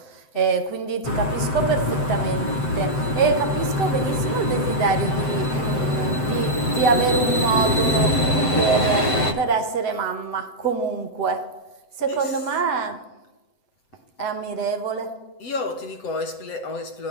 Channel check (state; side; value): late; right; 7.8 ms